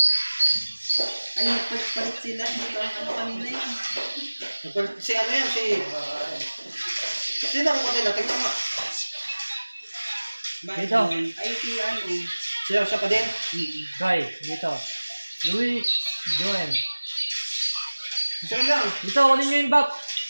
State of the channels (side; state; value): both; inverted; correlation -1.00